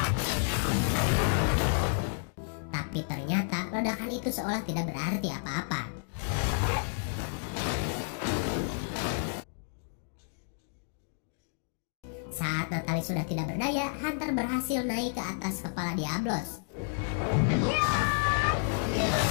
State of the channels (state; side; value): silent; right; digital silence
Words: Tapi ternyata ledakan itu seolah tidak berarti apa-apa. Saat Natalie sudah tidak berdaya, hunter berhasil naik ke atas kepala Diablos.